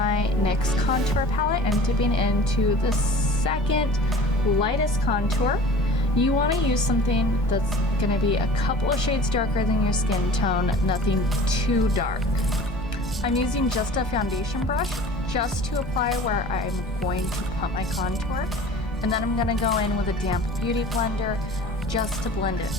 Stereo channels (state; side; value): normal; both; correlation 0.43